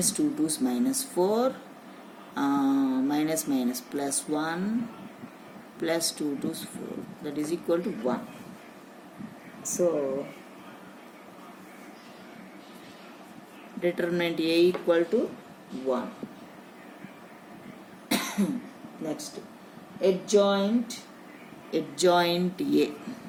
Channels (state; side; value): identical; both; correlation 1.00